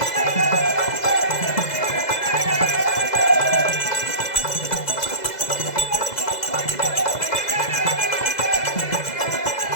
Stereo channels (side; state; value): right; late; 2.0 ms